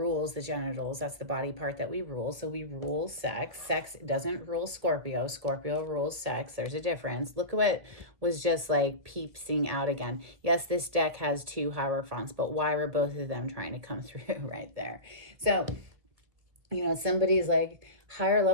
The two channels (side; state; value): left; late; 1.9 ms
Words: the genitals. That's the body part that we rule. So we rule sex. Sex doesn't rule Scorpio. Scorpio rules sex. There's a difference. Look at what was just like peeping out again. Yes, this deck has two Hierophants, but why were both of them trying to come through right there? So, you know, somebody's like higher